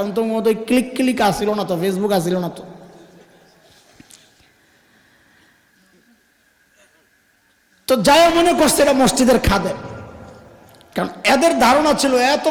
তো ওই ক্লিক আসছিল না, তো ফেসবুক আসছিল না। তো যাই মনে করছে এটা মসজিদের খাদেম, কারণ এদের ধারণা ছিল এত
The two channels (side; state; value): both; identical; correlation 1.00